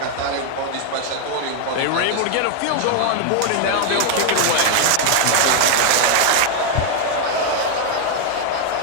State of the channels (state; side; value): different; both; correlation 0.00